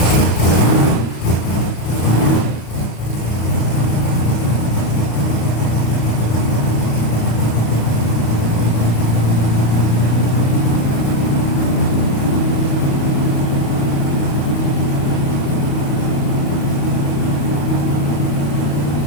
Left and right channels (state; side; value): late; right; 35 ms